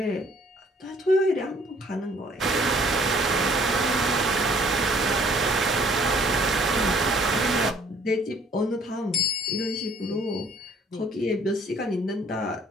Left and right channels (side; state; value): both; normal; correlation 0.59